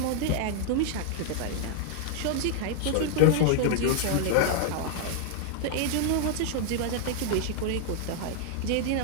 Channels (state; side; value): different; both; correlation 0.00